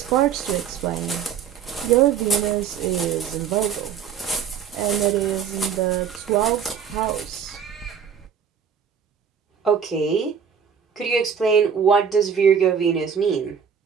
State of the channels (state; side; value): quieter; left; 7.4 dB